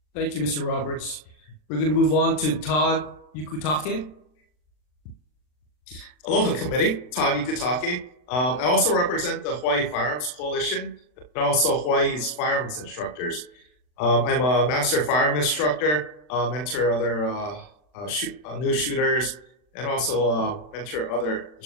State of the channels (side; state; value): right; late; 40 ms